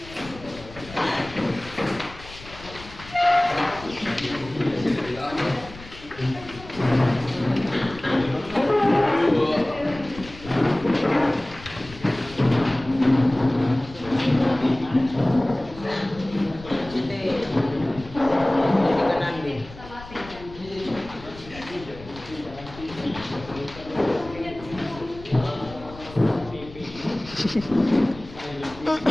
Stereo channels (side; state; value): left; noise; rumble, 17 dB below the sound